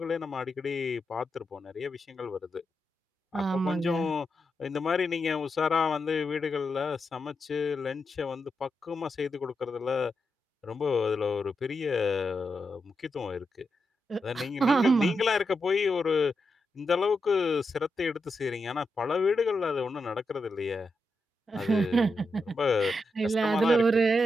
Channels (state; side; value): normal; both; correlation 0.86